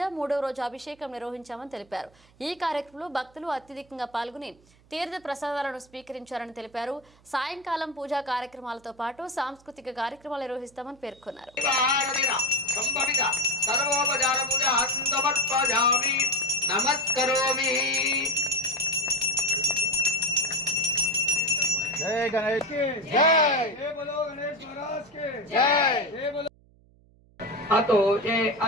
3వ రోజు అభిషేకం నిర్వహించామని తెలిపారు. ఈ కార్యక్రమంలో భక్తులు అత్యధికంగా పాల్గొని తీర్థ ప్రసాదాలను స్వీకరించారని తెలిపారు. సాయంకాలం పూజా కార్యక్రమాలతో పాటు సాంస్కృతిక కార్యక్రమాలు నిర్వహిస్తామని పేర్కొన్నారు. जय गणेश की जय, जय बोलो गणेश महाराज के जय, जय बोलो। अतो ये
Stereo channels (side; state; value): right; noise; hum, 29 dB below the sound